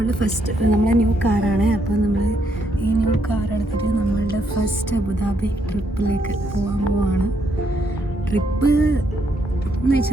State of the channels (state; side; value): normal; both; correlation 0.75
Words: ഫസ്റ്റ് നമ്മളെ ന്യൂ കാറാണ്. അപ്പോൾ നമ്മൾ ഈ ന്യൂ കാർ എടുത്തിട്ട് നമ്മളുടെ ഫസ്റ്റ് അബുദാബി ട്രിപ്പിലേക്ക് പോകാൻ പോവാണ്. ട്രിപ്പ് എന്ന്